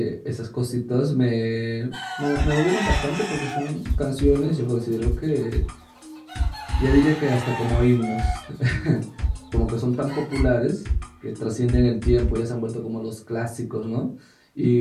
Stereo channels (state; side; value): identical; both; correlation 1.00